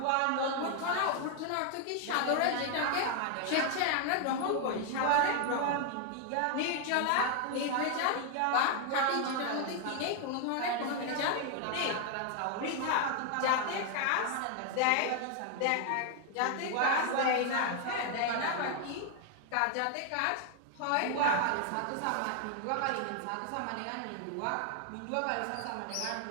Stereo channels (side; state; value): both; different; correlation 0.00